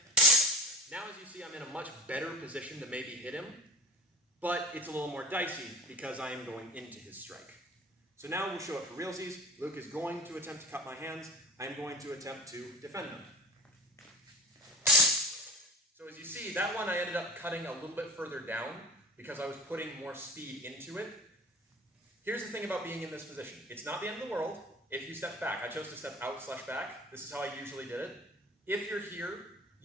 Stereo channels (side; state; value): both; normal; correlation 0.35